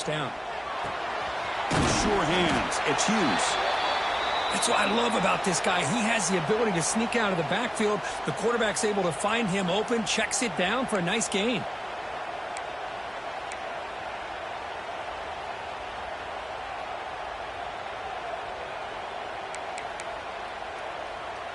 down. Sure hands. It's Hughes. That's what I love about this guy. He has the ability to sneak out of the backfield. The quarterback's able to find him open, checks it down for a nice gain.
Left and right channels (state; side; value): identical; both; correlation 1.00